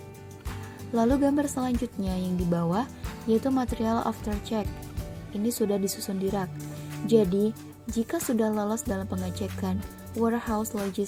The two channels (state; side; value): identical; both; correlation 1.00